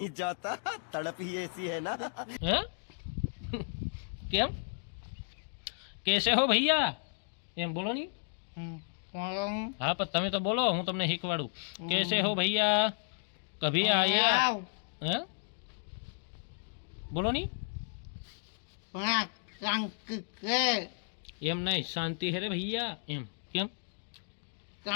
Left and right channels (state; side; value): silent; right; digital silence